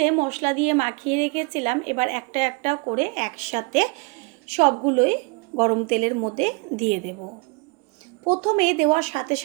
মশলা দিয়ে মাখিয়ে রেখেছিলাম, এবার একটা একটা করে একসাথে সবগুলোই গরম তেলের মধ্যে দিয়ে দেব। প্রথমে দেওয়ার সাথে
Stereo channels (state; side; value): quieter; left; 29.4 dB